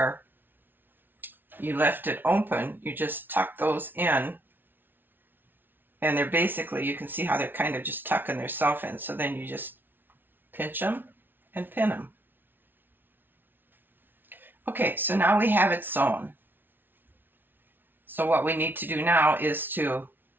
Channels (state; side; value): late; left; 0.096 ms